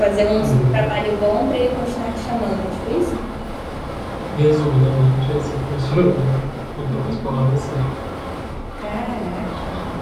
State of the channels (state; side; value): identical; both; correlation 1.00